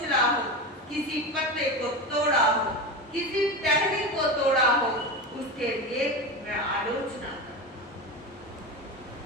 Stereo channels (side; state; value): both; normal; correlation 0.22